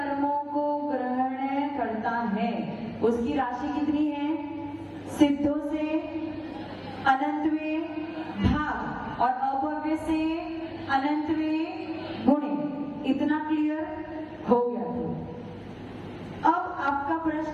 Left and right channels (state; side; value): identical; both; correlation 1.00